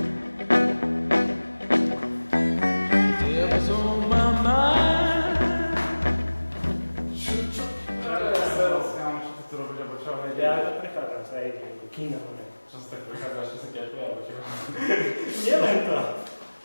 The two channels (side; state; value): both; inverted; correlation -1.00